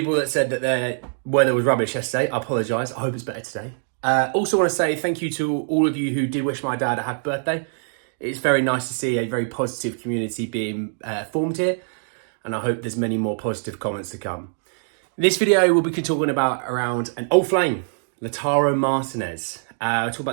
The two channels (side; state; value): left; silent; digital silence